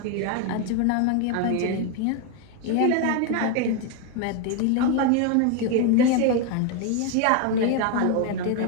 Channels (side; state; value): both; different; correlation 0.01